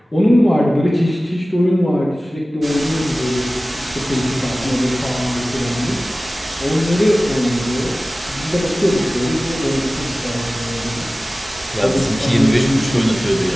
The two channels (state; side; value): normal; both; correlation 0.97